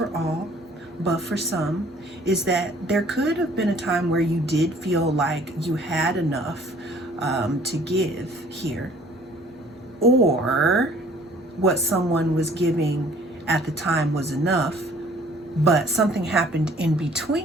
all, but for some, is that there could have been a time where you did feel like you had enough to give here, or what someone was giving at the time was enough, but something happened in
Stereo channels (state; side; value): normal; both; correlation 0.55